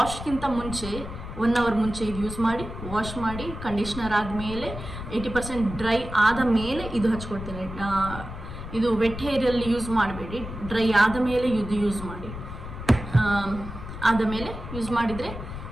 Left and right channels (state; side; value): noise; left; rumble, 9 dB below the sound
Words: ಮುಂಚೆ 1 ಅವರ್ ಮುಂಚೆ ಇದು ಯೂಸ್ ಮಾಡಿ, ವಾಶ್ ಮಾಡಿ, ಕಂಡೀಷ್ನರ್ ಆದಮೇಲೆ 80% ಡ್ರೈ ಆದ ಮೇಲೆ ಇದು ಹಚ್ಕೊಳ್ತೇನೆ. ಇದು ವೆಟ್ ಹೇರಲ್ಲಿ ಯೂಸ್ ಮಾಡಬೇಡಿ, ಡ್ರೈ ಆದ ಮೇಲೆ ಇದು ಯೂಸ್ ಮಾಡಿ. ಆದ ಮೇಲೆ ಯೂಸ್ ಮಾಡಿದರೆ